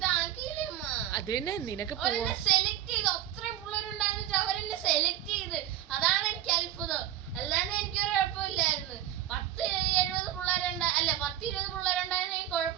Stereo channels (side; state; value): left; quieter; 12.0 dB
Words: അമ്മ? അത് തന്നെ നിനക്ക് അവരെന്നെ സെലക്ട് ചെയ്തു. അത്രയും പിള്ളേരുണ്ടായിരുന്നിട്ട് അവരെന്നെ സെലക്ട് ചെയ്ത്. അതാണ് എനിക്ക് അത്ഭുതം. അല്ലാതെ എനിക്കൊരു കുഴപ്പമില്ലായിരുന്നു. 10-70 പിള്ളേരുണ്ടാ അല്ല 10-20 പിള്ളേരുണ്ടായിരുന്നെങ്കിൽ